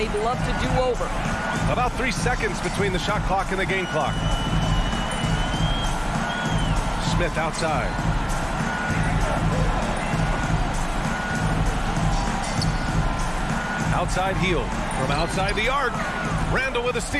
love to do over. About 3 seconds between the shot clock and the game clock. Smith outside. Outside heel. From outside the arc. Randall with a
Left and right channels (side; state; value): both; identical; correlation 1.00